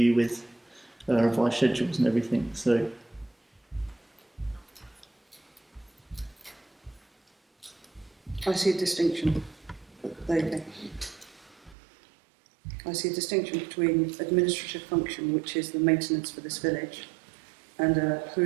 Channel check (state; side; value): drops out; left; at 11.8 s